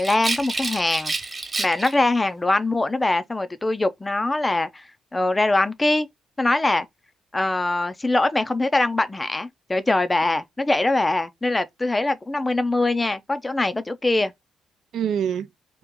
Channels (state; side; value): normal; both; correlation 0.95